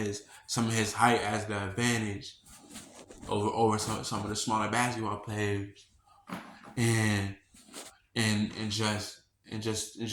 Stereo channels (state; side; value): identical; both; correlation 1.00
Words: height as the advantage over some of the smaller basketball players, and and just